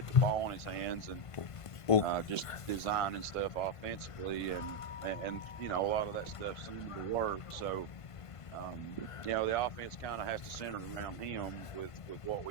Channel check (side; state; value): right; late; 1.5 ms